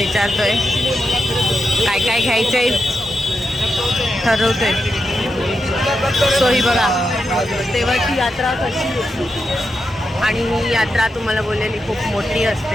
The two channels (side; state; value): both; normal; correlation 0.86